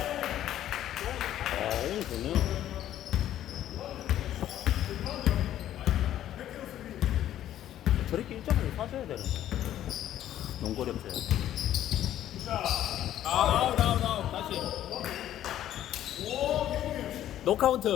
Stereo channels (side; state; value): right; quieter; 12.0 dB